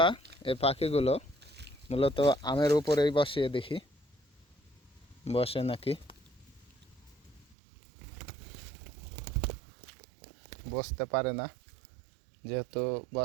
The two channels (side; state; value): left; drops out; at 7.6 s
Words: এই পাখিগুলো মূলত আমের উপরেই বসিয়ে দেখি বসে নাকি। বসতে পারে না, যেহেতু